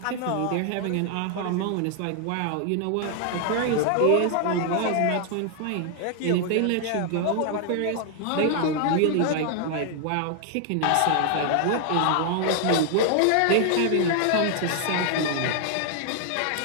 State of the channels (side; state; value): both; different; correlation 0.00